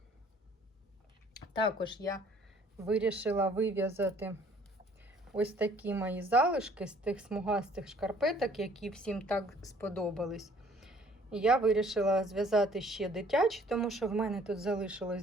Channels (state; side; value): normal; both; correlation 0.58